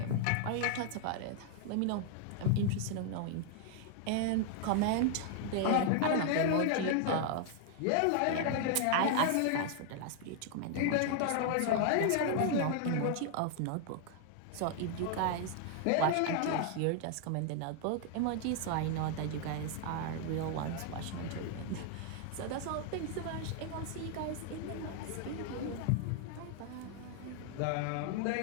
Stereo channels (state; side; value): different; both; correlation 0.00